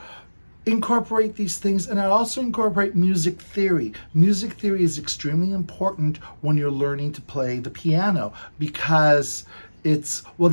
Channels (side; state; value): both; inverted; correlation -1.00